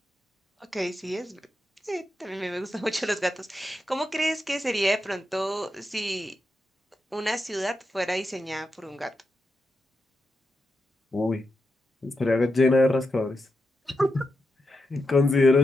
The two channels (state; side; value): normal; both; correlation 0.86